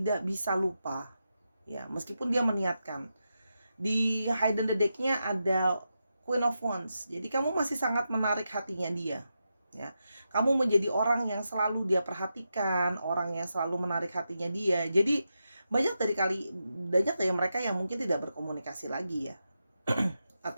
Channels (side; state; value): both; inverted; correlation -0.87